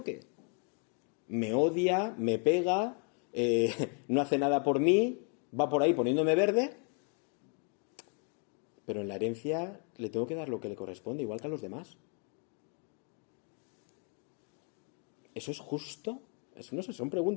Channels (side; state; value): right; quieter; 39.8 dB